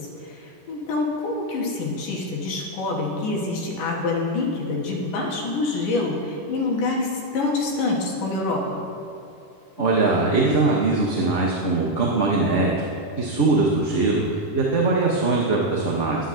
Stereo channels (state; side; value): late; right; 10 ms